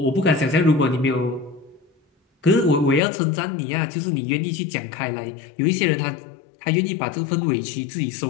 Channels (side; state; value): right; drops out; at 3.0 s